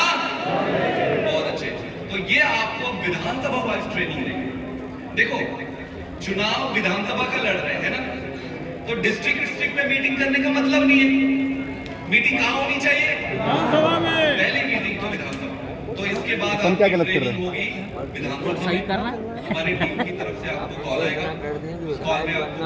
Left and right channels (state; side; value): identical; both; correlation 1.00